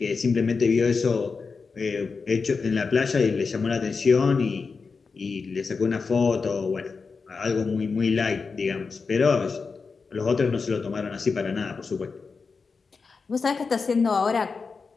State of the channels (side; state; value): right; quieter; 4.8 dB